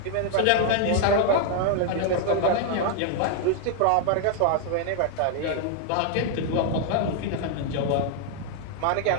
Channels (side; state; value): both; different; correlation 0.00